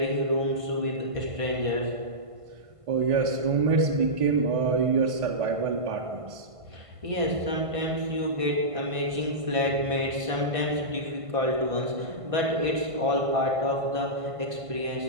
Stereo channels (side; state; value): left; late; 1.5 ms